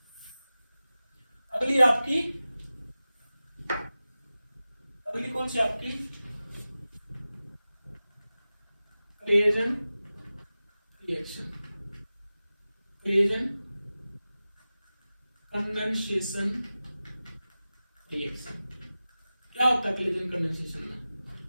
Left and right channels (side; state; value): both; inverted; correlation -0.95